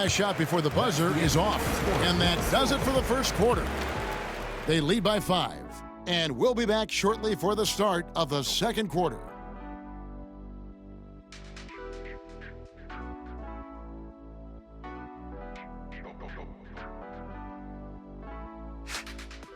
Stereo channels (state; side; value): identical; both; correlation 1.00